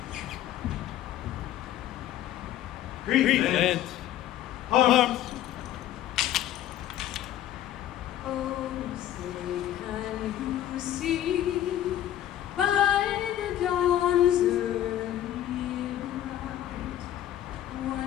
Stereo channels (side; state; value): right; quieter; 12.2 dB